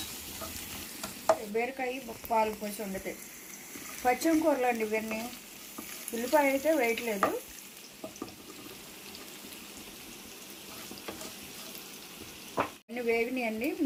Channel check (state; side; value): identical; both; correlation 1.00